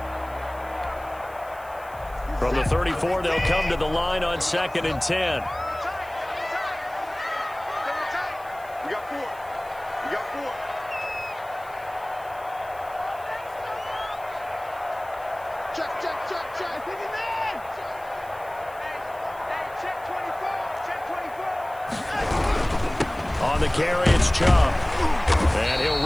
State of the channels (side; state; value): right; noise; hiss, 23 dB below the sound